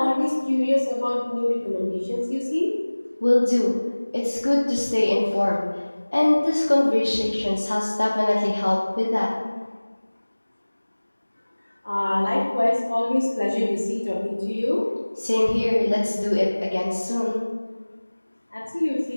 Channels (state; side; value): inverted; both; correlation -1.00